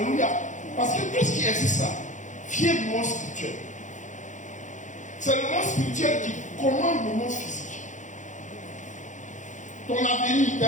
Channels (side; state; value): right; late; 0.36 ms